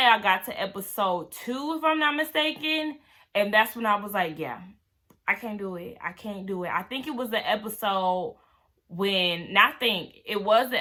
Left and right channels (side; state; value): both; identical; correlation 1.00